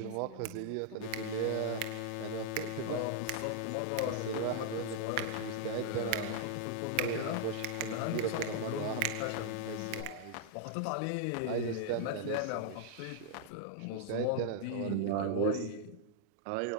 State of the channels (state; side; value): different; both; correlation -0.01